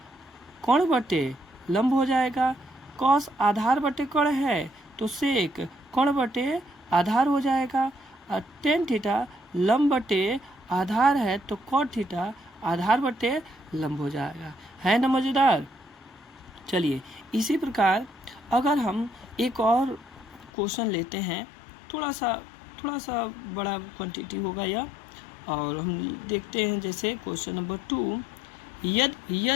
कर्ण बटे लंब हो जाएगा, कॉस आधार बटे कर्ण है तो सेक कर्ण बटे आधार हो जाएगा, और टेन थीटा लंब बटे आधार है तो कॉट थीटा आधार बटे लंब हो जाएगा। है ना मज़ेदार? चलिए इसी प्रकार अगर हम एक और क्वेश्चन लेते हैं, थोड़ा सा बड़ा क्वांटिटी होगा यह, और हम देखते हैं जैसे क्वेश्चन नंबर 2,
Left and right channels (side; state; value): right; drops out; at 20.5 s